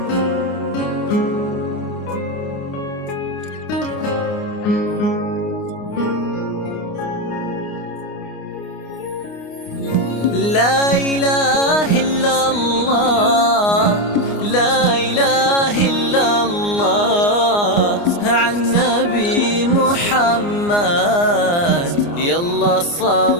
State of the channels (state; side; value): late; right; 29 ms